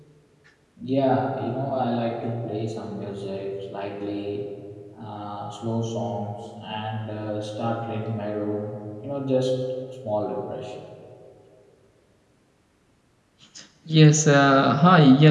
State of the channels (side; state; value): both; identical; correlation 1.00